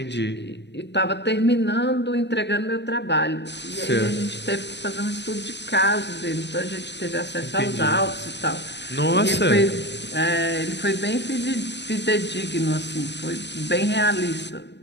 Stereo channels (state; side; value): late; right; 0.50 ms